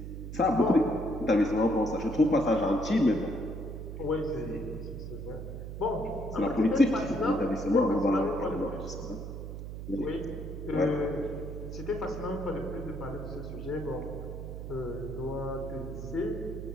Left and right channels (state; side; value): noise; right; hum, 8 dB below the sound